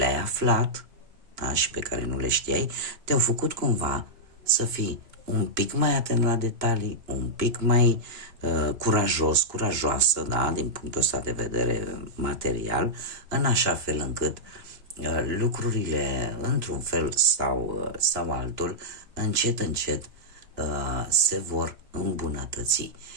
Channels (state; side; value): late; left; 2.9 ms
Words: aflat, da, și pe care nu le știai, te-au făcut cumva să fii un pic mai atent la detalii, un pic mai curajoasă, da, din punctul ăsta de vedere material, în așa fel încât lucrurile, într-un fel sau altul, încet se vor îmbunătăți.